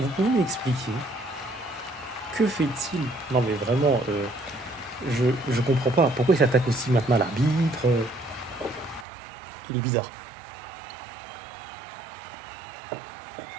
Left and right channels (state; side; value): drops out; left; at 9.1 s